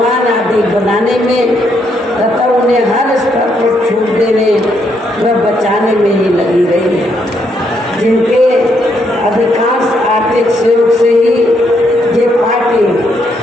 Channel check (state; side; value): normal; both; correlation 0.75